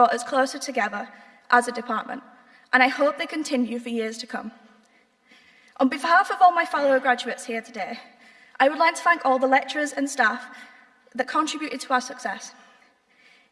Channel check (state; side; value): identical; both; correlation 1.00